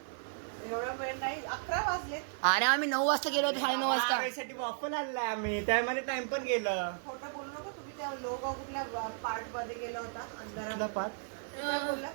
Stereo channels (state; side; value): silent; left; digital silence